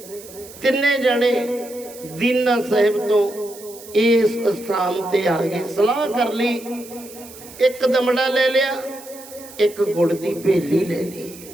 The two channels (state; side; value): noise; right; hiss, 18 dB below the sound